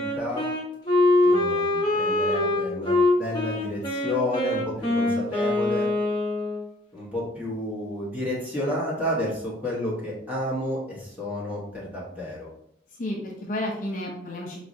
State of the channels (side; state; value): both; normal; correlation 0.58